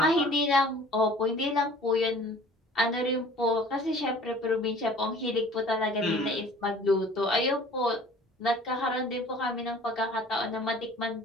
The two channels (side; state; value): both; normal; correlation 0.48